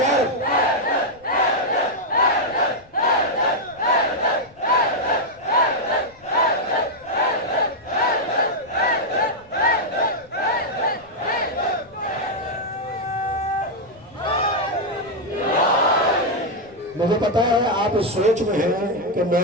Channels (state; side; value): noise; left; rumble, 28 dB below the sound